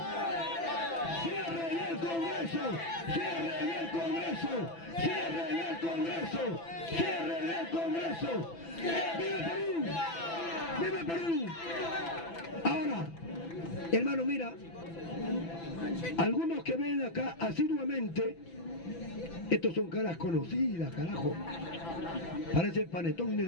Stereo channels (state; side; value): late; right; 6.0 ms